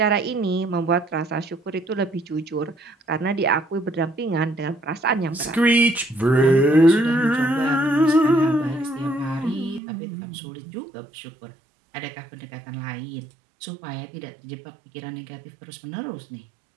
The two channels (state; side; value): drops out; left; at 9.8 s